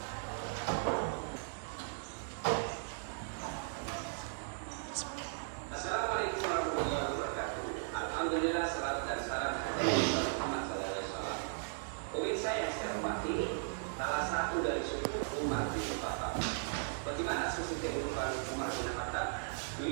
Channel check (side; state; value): left; silent; digital silence